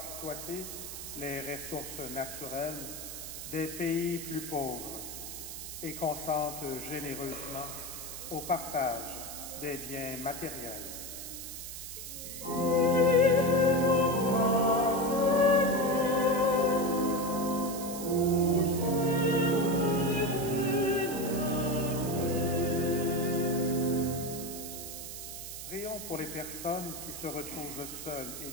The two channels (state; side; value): noise; right; hiss, 9 dB below the sound